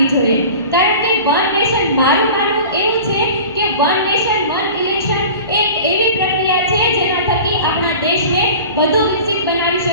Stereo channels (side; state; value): both; inverted; correlation -0.39